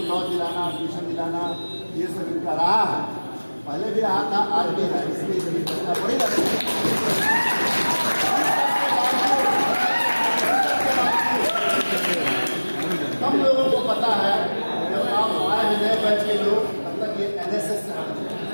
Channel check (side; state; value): both; inverted; correlation -1.00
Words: लॉज दिलाना, ट्यूशन दिलाना, ये सब इनका रहा है, पहले भी रहा था, आज भी है। इसलिए बड़ी रहती है। कम लोगों को पता है, जब आप आए हैं नए बैच के लोग, तब तक ये एनएसएस से